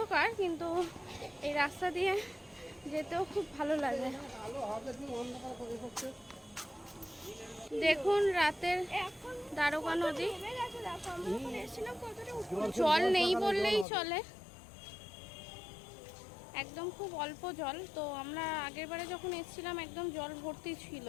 কিন্তু এই রাস্তা দিয়ে যেতেও খুব ভালো লাগে। দেখুন রাতের দ্বারকা নদী, জল নেই বললেই চলে, একদম খুব অল্প জল। তো আমরা আগেরবারে যখন এসেছিলাম একদম জল ভর্তি ছিল।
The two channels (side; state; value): right; drops out; at 13.9 s